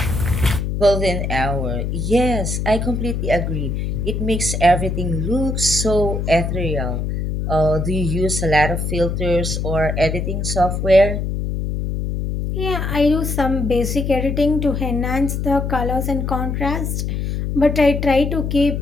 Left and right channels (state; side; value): noise; left; hum, 2 dB below the sound